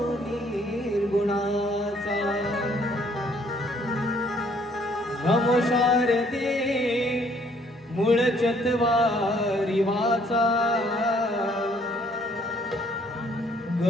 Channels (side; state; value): both; normal; correlation 0.63